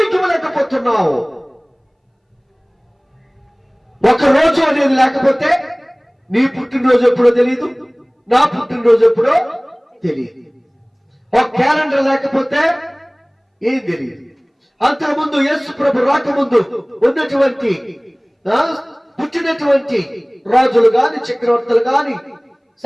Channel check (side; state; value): both; identical; correlation 1.00